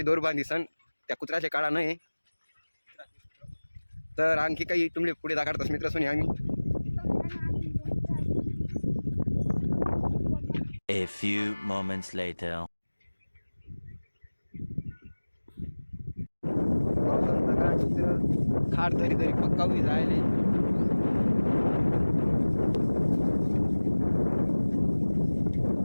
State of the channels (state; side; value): inverted; both; correlation -1.00